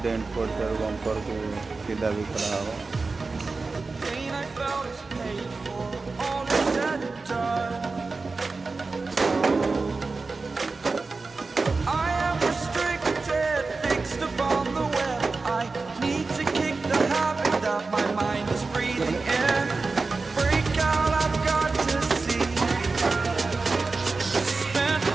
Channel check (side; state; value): left; quieter; 3.9 dB